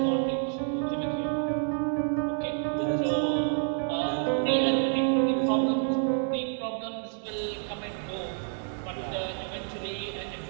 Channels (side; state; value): left; silent; digital silence